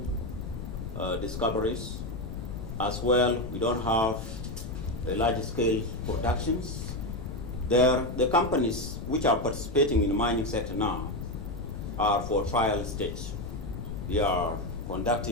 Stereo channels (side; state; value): left; noise; rumble, 8 dB below the sound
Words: discoveries. As well, we don't have large scale productions. The companies which are participating in the mining sector now are for trial stage. We are